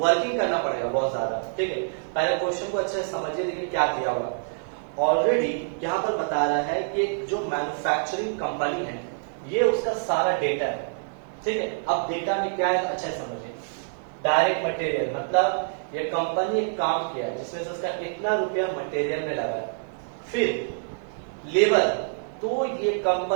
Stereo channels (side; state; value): left; silent; digital silence